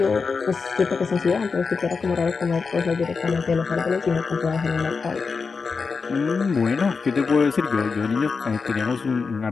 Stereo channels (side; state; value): right; quieter; 4.9 dB